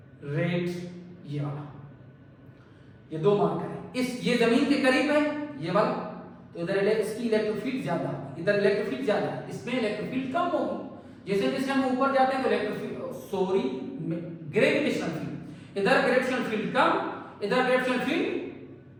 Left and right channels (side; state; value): both; identical; correlation 1.00